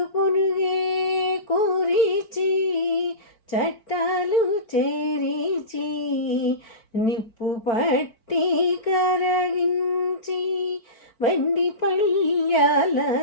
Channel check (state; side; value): late; right; 4.4 ms